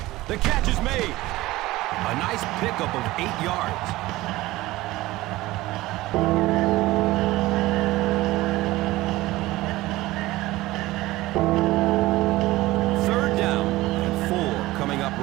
The catch is made. A nice pickup of 8 yards. Third down and 4 coming up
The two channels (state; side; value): quieter; left; 18.2 dB